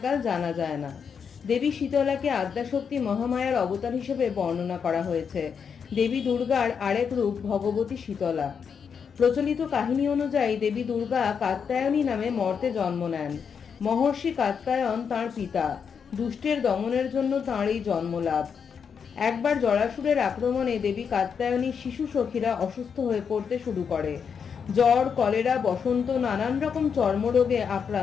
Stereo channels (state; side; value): quieter; right; 6.7 dB